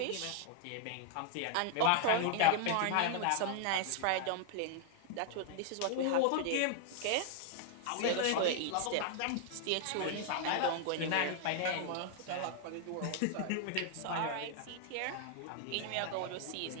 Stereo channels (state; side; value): different; both; correlation 0.00